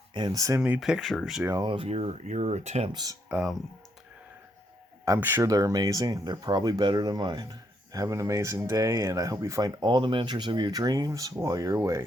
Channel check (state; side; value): normal; both; correlation 0.75